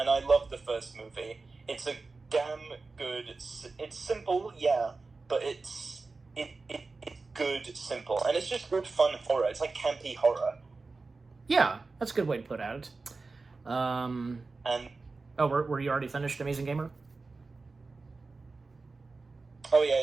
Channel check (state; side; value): quieter; left; 3.9 dB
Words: I love the first movie. It's a damn good... It's simple, yeah, but it's good, simple. And it's just good, fun horror. It's like campy horror. Yeah, that's a good way to put it. And... Oh, were you already finished, Amazing Gamer? Oh, yeah,